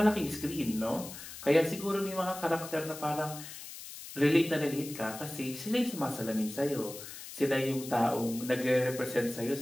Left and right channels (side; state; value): left; noise; hiss, 12 dB below the sound